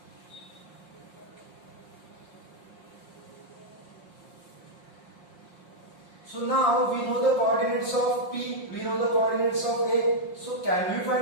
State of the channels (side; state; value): right; late; 5.7 ms